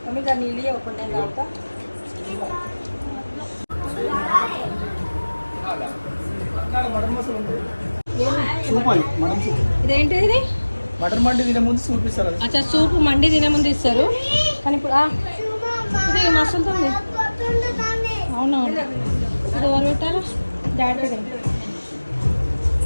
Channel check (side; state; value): both; inverted; correlation -1.00